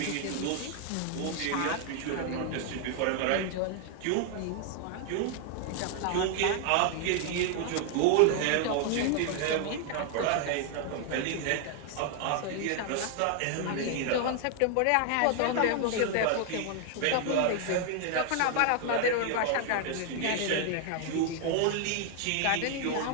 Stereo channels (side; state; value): both; different; correlation 0.00